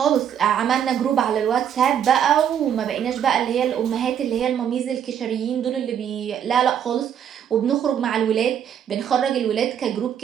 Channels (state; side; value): quieter; left; 9.0 dB